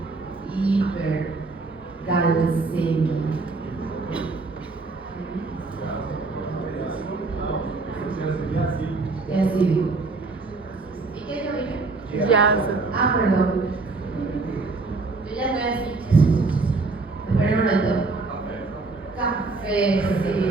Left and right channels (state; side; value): quieter; left; 3.8 dB